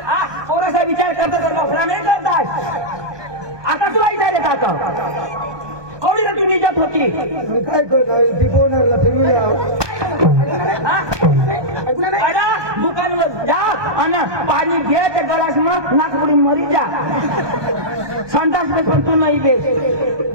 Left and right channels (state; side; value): late; left; 1.2 ms